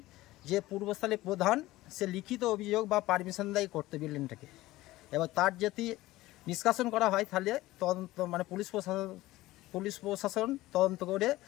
যে পূর্বস্থলী প্রধান সে লিখিত অভিযোগ বা পারমিশন দেয় করতে বিল্ডিংটাকে, এবার তার যদি নিষ্কাশন করা হয় তাহলে তদন্ত মানে পুলিশ প্রশাসন তদন্ত করে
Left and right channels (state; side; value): quieter; right; 17.6 dB